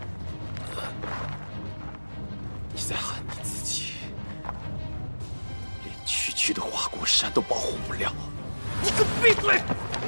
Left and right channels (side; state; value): both; inverted; correlation -1.00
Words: 你在喊你自己，连区区的花果山都保护不了。你给我闭嘴！